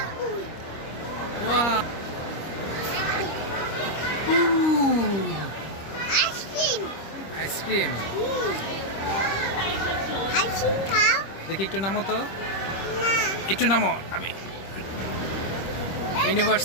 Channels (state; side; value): late; right; 25 ms